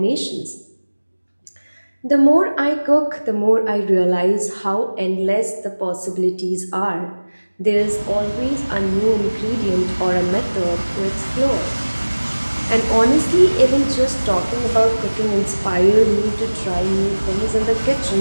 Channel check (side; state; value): both; inverted; correlation -1.00